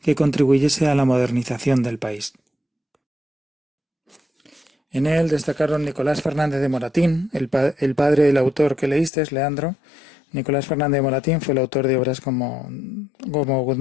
que contribuyese a la modernización del país. En él destacaron Nicolás Fernández de Moratín, el padre del autor que leíste, Leandro. Nicolás Fernández de Moratín fue el autor de obras como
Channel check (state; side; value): drops out; right; at 9.1 s